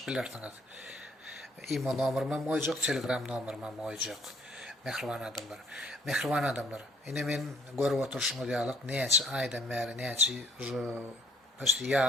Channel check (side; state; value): both; normal; correlation 0.60